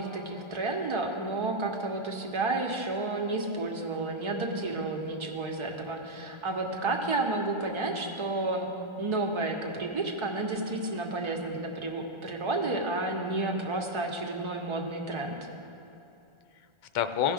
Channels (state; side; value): late; left; 1.4 ms